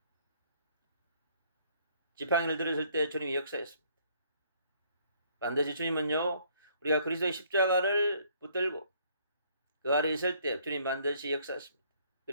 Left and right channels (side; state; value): both; inverted; correlation -0.63